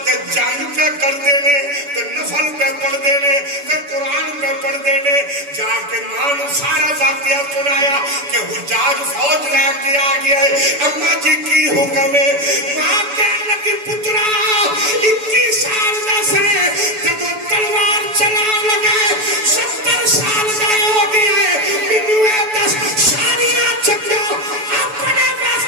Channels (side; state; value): left; late; 6.9 ms